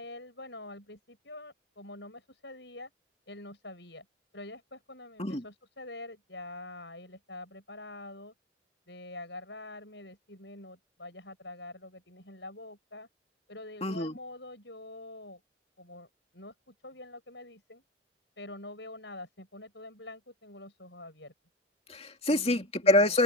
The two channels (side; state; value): both; normal; correlation 0.20